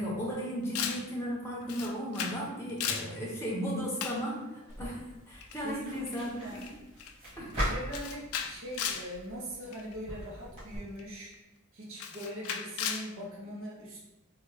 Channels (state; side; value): normal; both; correlation 0.36